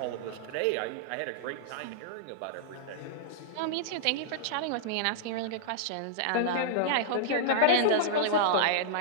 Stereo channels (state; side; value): different; both; correlation -0.02